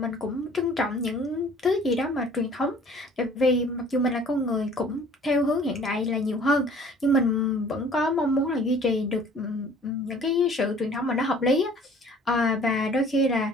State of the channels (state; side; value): normal; both; correlation 0.52